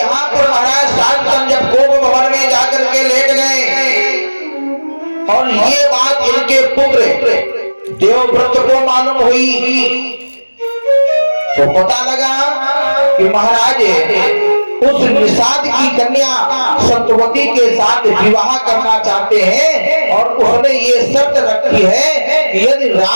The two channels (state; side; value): inverted; both; correlation -1.00